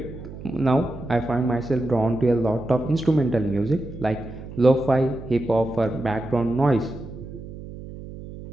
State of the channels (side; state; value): right; noise; hum, 13 dB below the sound